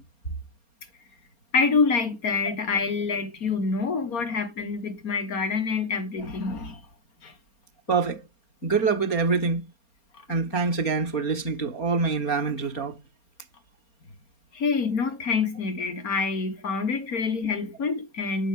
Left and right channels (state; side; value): late; right; 4.3 ms